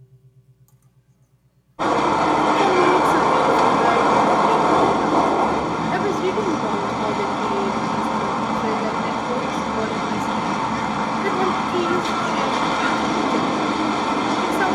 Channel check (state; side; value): identical; both; correlation 1.00